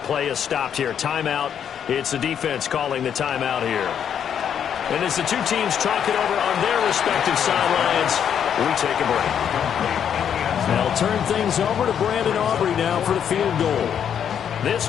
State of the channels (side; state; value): right; quieter; 8.6 dB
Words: play is stopped here. Timeout. It's the defense calling the timeout here. And as the two teams talk it over on their respective sidelines, we take a break. They'll turn things over to Brandon Aubrey now for the field goal. This